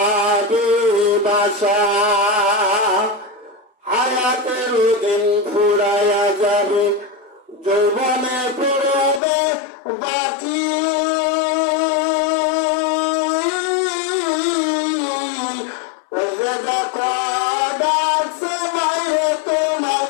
বাসা হায়াতের দিন ফুরাইয়া যাবে যৌবনে পড়বে বাকি দেখো ডাকছে বাইরে তোমার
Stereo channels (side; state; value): right; drops out; at 9.2 s